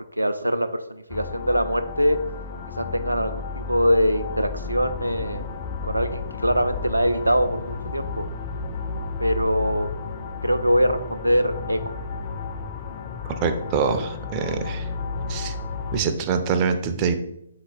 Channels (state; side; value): inverted; both; correlation -0.78